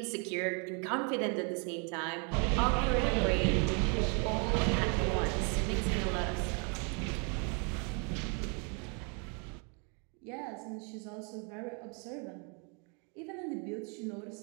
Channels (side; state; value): left; quieter; 36.3 dB